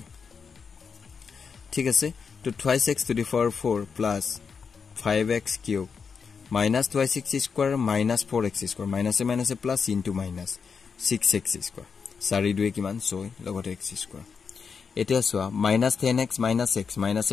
ঠিক আছে তো 2x to the power 4 plus 5x cube minus 2x square minus 4x square minus a plus into minus 6x square 4 2 কিমান 6 লগতে x square এতিয়া সোয়া minus 10x minus x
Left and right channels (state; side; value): quieter; right; 5.8 dB